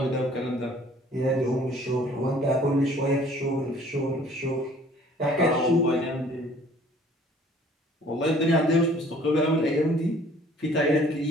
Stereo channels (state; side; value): normal; both; correlation 0.55